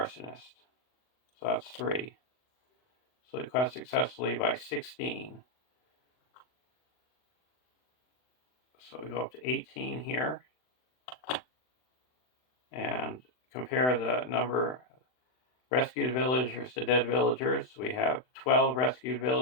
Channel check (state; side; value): late; right; 39 ms